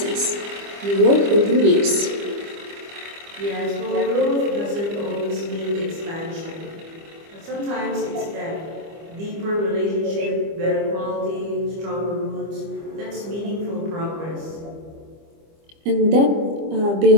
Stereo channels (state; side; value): late; left; 25 ms